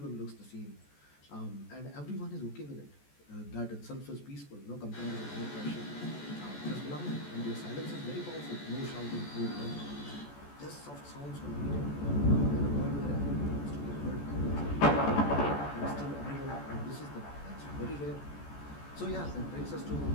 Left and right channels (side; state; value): right; late; 14 ms